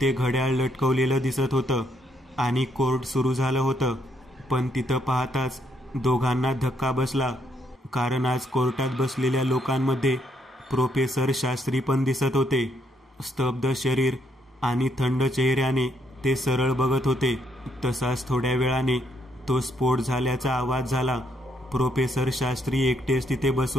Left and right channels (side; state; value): both; normal; correlation 0.74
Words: घड्याळ लटकवलेलं दिसत होतं आणि कोर्ट सुरू झालं होतं. पण तिथं पाहताच दोघांना धक्का बसला, कारण आज कोर्टात बसलेल्या लोकांमध्ये प्रोफेसर शास्त्री पण दिसत होते. स्तब्ध शरीर आणि थंड चेहऱ्याने ते सरळ बघत होते. तसाच थोड्या वेळाने तो स्फोट झाल्याचा आवाज झाला. प्रोफेसर शास्त्री एकटेच तिथे